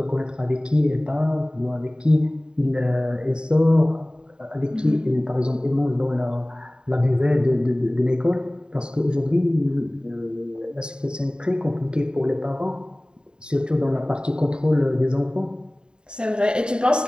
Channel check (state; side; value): late; left; 0.048 ms